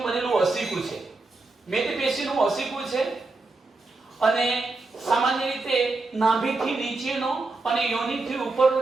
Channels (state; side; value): quieter; left; 3.4 dB